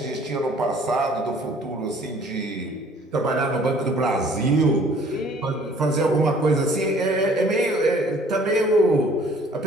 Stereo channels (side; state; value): both; normal; correlation 0.56